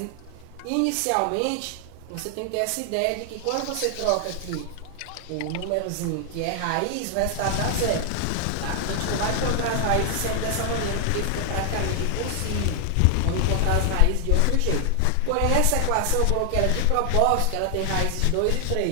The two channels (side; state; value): both; different; correlation 0.00